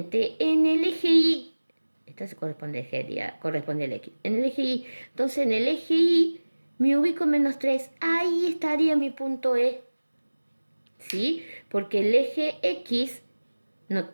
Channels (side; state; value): both; inverted; correlation -1.00